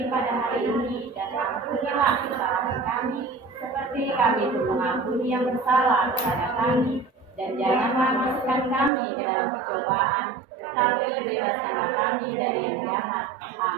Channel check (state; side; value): drops out; left; at 8.9 s